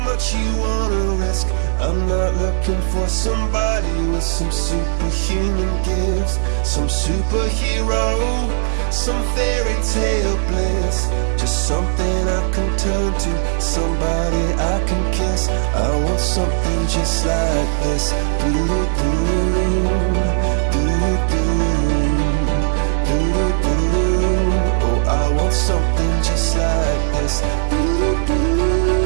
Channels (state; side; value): silent; left; digital silence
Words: much you wanna risk? I'm not looking for somebody with some superhuman gifts, some superhero, some fairy tale bliss. Just something I can turn to, somebody I can kiss. I want something just like this. Oh, I want something just like this.